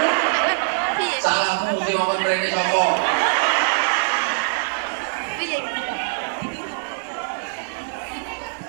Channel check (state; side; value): silent; left; digital silence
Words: Salahmu sing ngomong rene sapa?